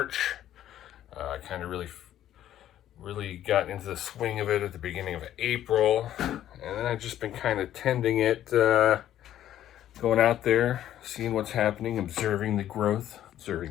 I kind of really got into the swing of it at the beginning of April, and then I've just been kind of tending it, going out there, seeing what's happening, observing the growth,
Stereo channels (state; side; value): quieter; right; 11.9 dB